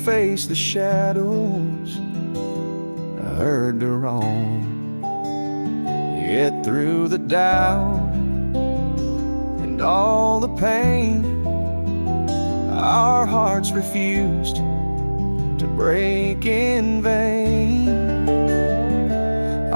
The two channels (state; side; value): inverted; both; correlation -1.00